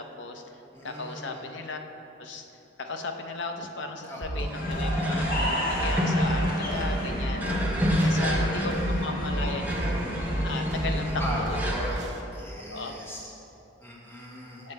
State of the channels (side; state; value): both; normal; correlation 0.57